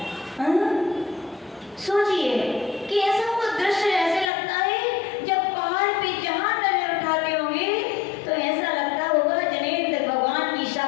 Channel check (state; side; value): drops out; right; at 4.3 s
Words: सोचिए कि ऐसा वो दृश्य ऐसे लगता है जब पहाड़ पे जहां नजर उठाते होंगे तो ऐसा लगता होगा जनेन्द्र भगवान की